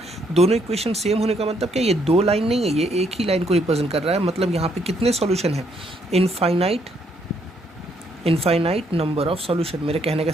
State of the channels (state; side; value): normal; both; correlation 0.71